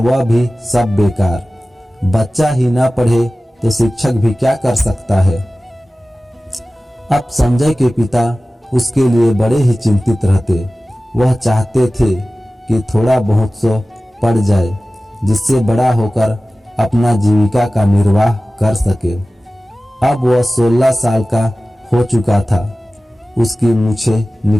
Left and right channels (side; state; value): both; normal; correlation 0.96